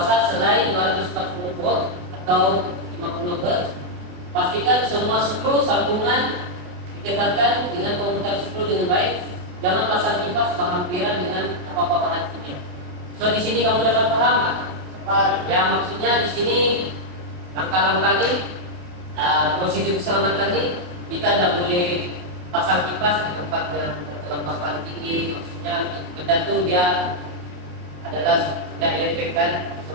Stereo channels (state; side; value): late; left; 28 ms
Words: selain 240 volt atau 50 Hz. Pastikan semua skru sambungan dikekatkan dengan komunikasi skru dengan baik. Jangan pasang kipas berhampiran dengan apa-apa bahan kimia. So di sini kamu dapat paham? Yang maksudnya di sini langkah-langkah ini prosedur keselamatan ini kita tidak boleh pasang kipas di tempat yang berkelembapan tinggi. Maksudnya benda itu dia adalah benda elektrik kan.